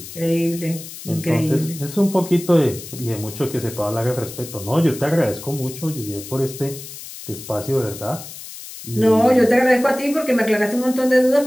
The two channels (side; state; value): left; noise; hiss, 13 dB below the sound